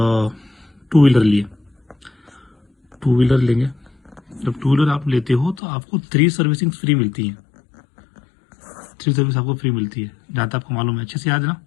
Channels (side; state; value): right; drops out; at 5.6 s